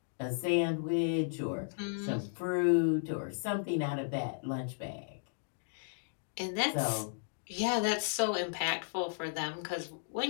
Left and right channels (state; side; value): silent; right; digital silence